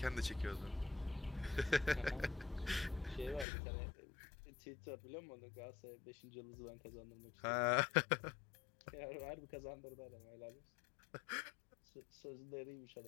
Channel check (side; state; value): right; drops out; at 3.5 s